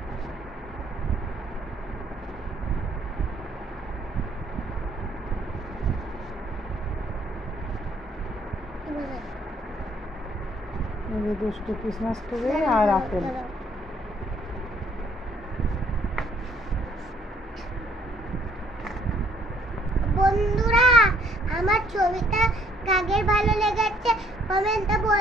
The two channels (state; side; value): normal; both; correlation 0.65